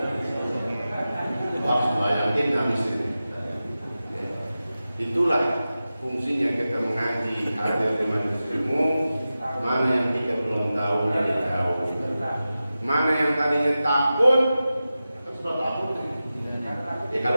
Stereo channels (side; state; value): both; inverted; correlation -0.94